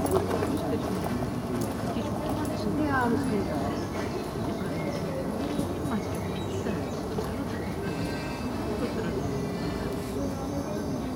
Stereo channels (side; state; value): both; identical; correlation 1.00